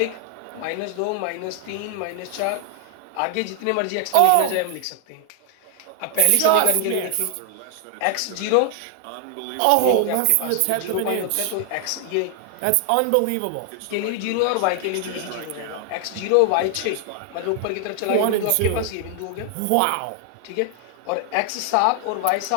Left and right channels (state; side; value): different; both; correlation 0.00